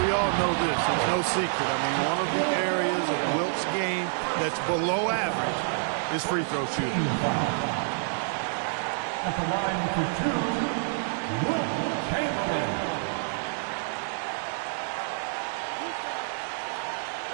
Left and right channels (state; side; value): silent; left; digital silence